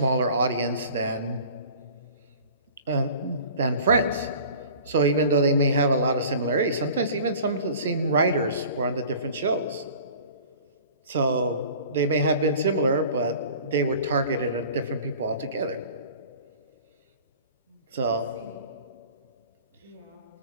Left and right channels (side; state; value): both; inverted; correlation -0.45